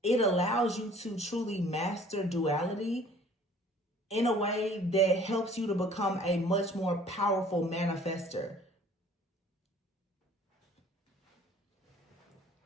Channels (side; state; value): both; normal; correlation 0.53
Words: it allows you to truly master duality in a way that helps you to become a much more powerful manifester.